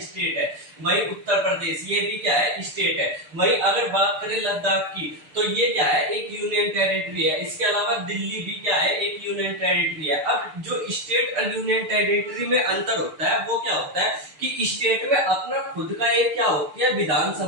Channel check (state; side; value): late; left; 6.7 ms